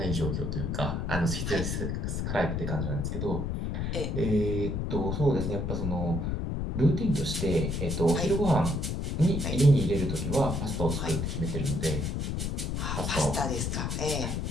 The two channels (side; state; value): left; noise; rumble, 1 dB below the sound